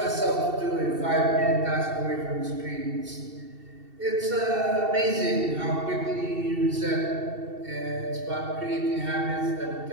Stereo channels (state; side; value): late; left; 2.7 ms